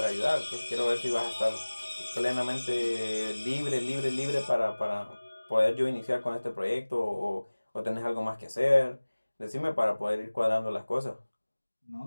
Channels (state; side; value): inverted; both; correlation -1.00